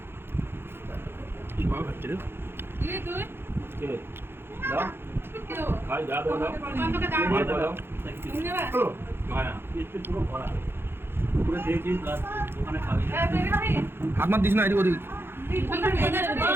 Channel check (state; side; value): late; left; 0.11 ms